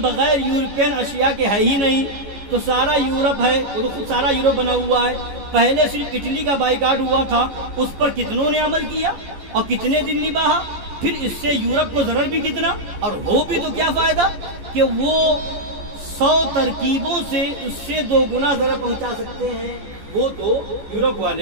یورپین اشیاء کے ہے ہی نہیں، تو سارا یورپ ہے، وہ تو خود سارا یورپ بنا ہوا ہے. پہلے صرف اٹلی کا بائیکاٹ ہوا تھا، اس پر کتنوں نے عمل کیا اور کتنے دن نبھا. پھر اس سے یورپ کو ضرر بھی کتنا، اور ہو بھی تو کیا فائدہ کہ وہ 100 ترکیبوں سے اس سے 2 گنا ضرر پہنچا سکتے ہیں. وہ تو یورپ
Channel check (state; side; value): late; left; 14 ms